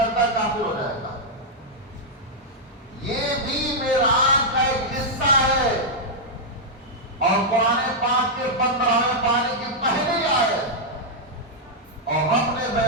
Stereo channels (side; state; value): both; normal; correlation -0.05